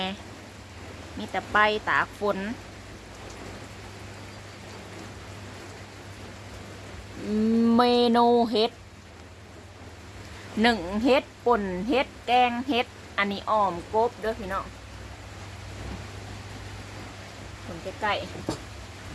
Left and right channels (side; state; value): both; identical; correlation 1.00